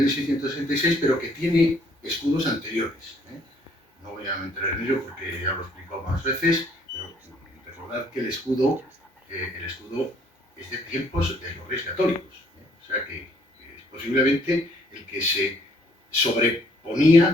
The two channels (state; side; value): normal; both; correlation 0.64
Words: pero que tiene escudos anteriores. No voy a entrar en ello porque ya lo he explicado más veces, pero recordad que el escudo es de tiempos de los Reyes Católicos. O sea que es posible posiblemente el que se